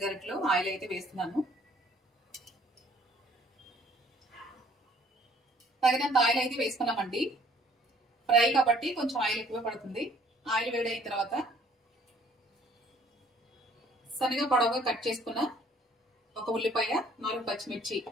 గరిటెలు ఆయిల్ అయితే వేస్తున్నాను. తగినంత ఆయిల్ అయితే వేసుకున్నామండి. ఫ్రై కాబట్టి కొంచెం ఆయిల్ ఎక్కువ పడుతుంది. ఆయిల్ వేడైన తర్వాత సన్నగా పొడవుగా కట్ చేసుకున్న ఒక ఉల్లిపాయ, 4 పచ్చిమిర్చి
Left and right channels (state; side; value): normal; both; correlation 0.59